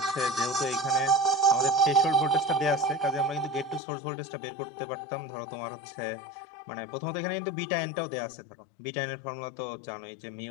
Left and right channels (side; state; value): right; drops out; at 3.8 s